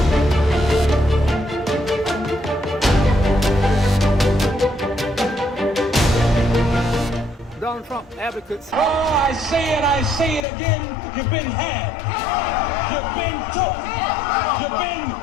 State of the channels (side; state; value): right; drops out; at 10.5 s